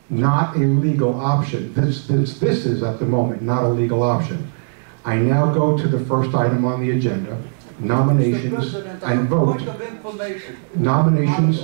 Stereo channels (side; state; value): left; silent; digital silence